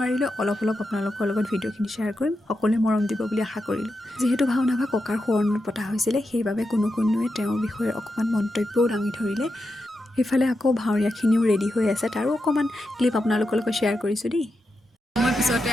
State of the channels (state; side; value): normal; both; correlation 0.87